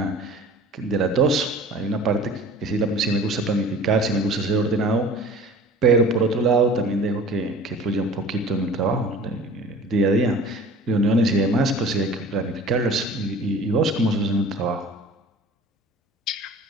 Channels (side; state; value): both; normal; correlation 0.43